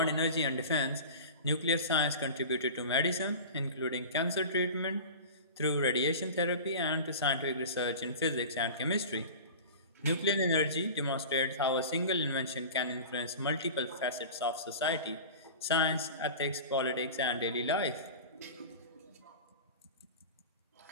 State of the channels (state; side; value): inverted; both; correlation -0.34